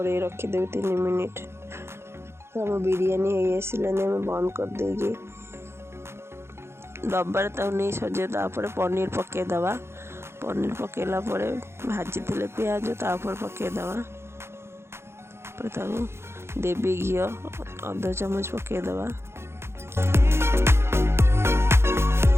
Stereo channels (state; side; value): late; left; 0.12 ms